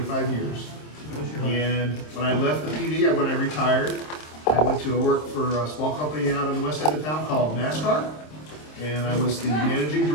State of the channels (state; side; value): late; right; 26 ms